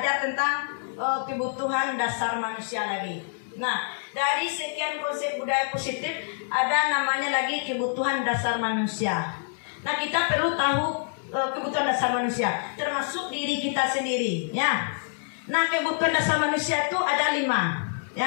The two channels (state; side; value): silent; right; 60 dB below the other